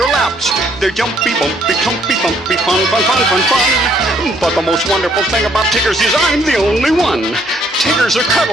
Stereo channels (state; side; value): normal; both; correlation 0.66